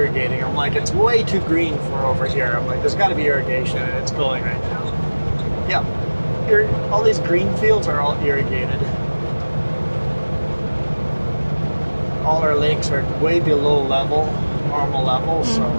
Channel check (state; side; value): inverted; both; correlation -1.00